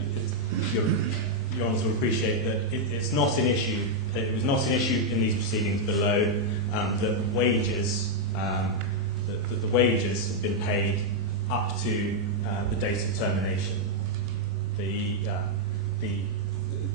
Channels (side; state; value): both; normal; correlation -0.02